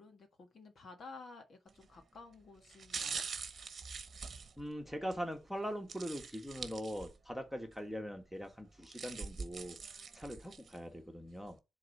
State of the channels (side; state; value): both; normal; correlation 0.90